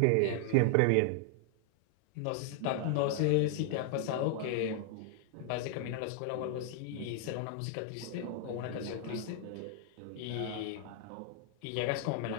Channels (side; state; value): both; different; correlation 0.00